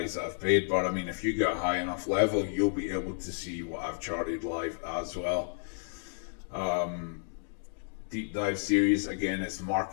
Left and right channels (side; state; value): right; silent; digital silence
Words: that I've paid, but I mean, if you get a high enough level, you'll be able to see what I've charted live as well. Deep dive series, again, it's